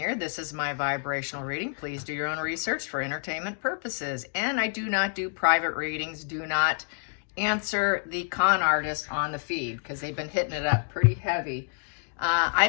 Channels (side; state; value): right; silent; digital silence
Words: This is my vibrational reading. Please do your own research for entertainment purposes. And I do not do private readings. Do not answer the con artist on the feed because they've been hitting it up pretty heavy.